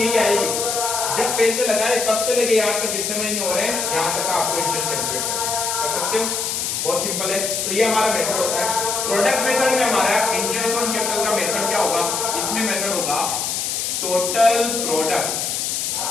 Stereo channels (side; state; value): left; noise; hiss, 1 dB below the sound